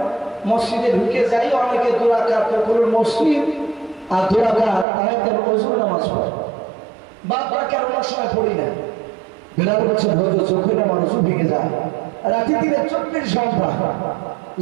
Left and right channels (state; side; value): drops out; left; at 4.9 s